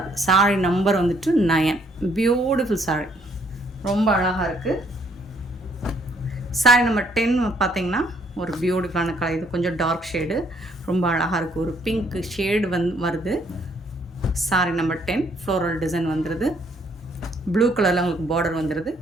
சாரி நம்பர் வந்துட்டு 9. பியூட்டிஃபுல் சாரி, ரொம்ப அழகாக இருக்குது. சாரி நம்பர் 10 பார்த்தீங்கன்னா ஒரு பியூட்டிஃபுல்லான கலர். இது கொஞ்சம் டார்க் ஷேடு, ரொம்ப அழகாக இருக்குது. ஒரு பிங்க் ஷேடு வருது. சாரி நம்பர் 10 ஃப்ளோரல் டிசைன் வந்துடுது. ப்ளூ கலரில் உங்களுக்கு பார்டர் வந்துடுது.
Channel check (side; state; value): both; normal; correlation 0.66